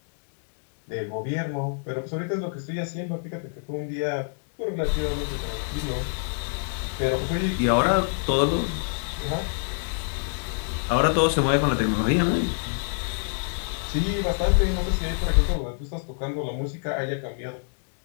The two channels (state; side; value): silent; right; digital silence